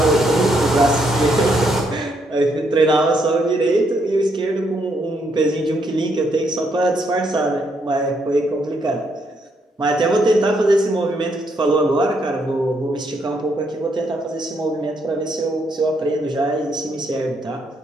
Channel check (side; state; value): both; normal; correlation 0.75